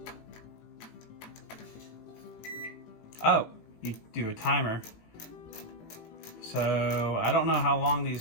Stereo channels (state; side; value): late; right; 18 ms